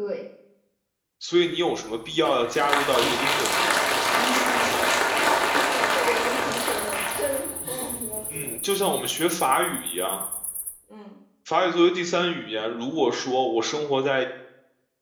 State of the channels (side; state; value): both; identical; correlation 1.00